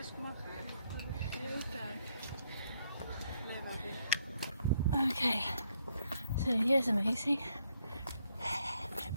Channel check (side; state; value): both; inverted; correlation -0.74